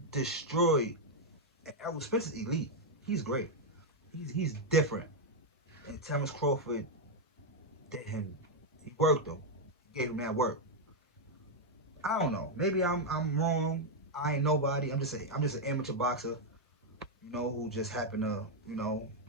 destroyed. And Errol Spence is elite. He's great. He's different. And Terrence Crawford did him. He worked him. He gave him that work. I don't know. Maybe I'm wrong. I ain't nobody. I'm just an amateur boxer, who just happened to, know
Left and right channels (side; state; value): both; normal; correlation 0.00